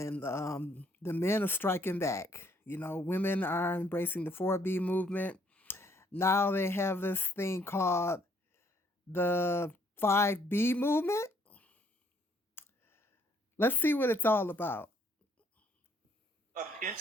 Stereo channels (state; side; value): normal; both; correlation 0.66